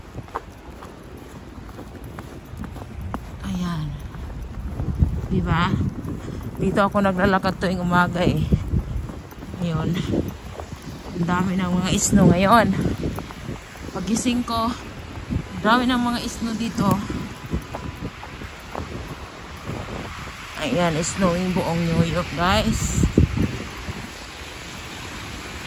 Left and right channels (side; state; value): both; identical; correlation 1.00